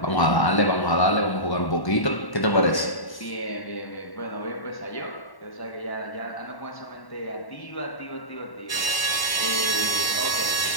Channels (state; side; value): late; right; 1.1 ms